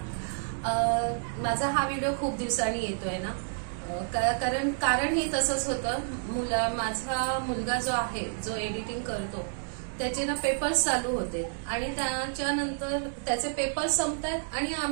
माझा हा व्हिडिओ खूप दिवसांनी येतोय ना, कारण ही तसंच होतं. माझा मुलगा जो आहे, जो एडिटिंग करतो, त्याचे ना पेपर्स चालू होते आणि त्याच्यानंतर त्याचे पेपर्स संपतात आणि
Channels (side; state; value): left; silent; digital silence